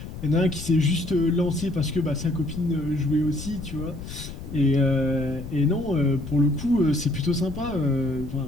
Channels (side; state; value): left; noise; rumble, 10 dB below the sound